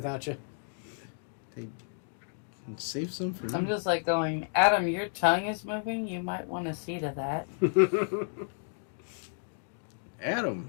you. Save some for I'm me. just like going, Adam, your tongue is moving. You might want to see to that. Adam,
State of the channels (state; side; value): silent; right; digital silence